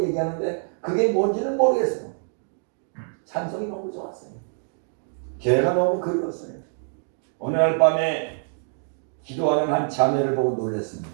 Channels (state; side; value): silent; left; 58 dB below the other